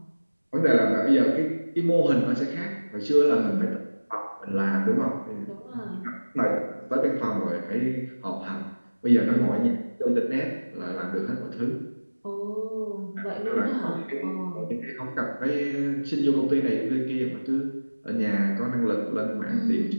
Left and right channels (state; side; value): inverted; both; correlation -1.00